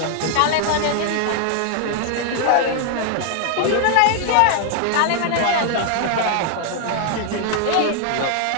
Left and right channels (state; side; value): different; both; correlation 0.00